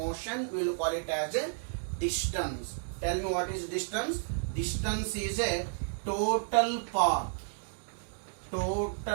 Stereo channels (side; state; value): left; silent; digital silence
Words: we will call it as a distance. Tell me what is distance? Distance is a total path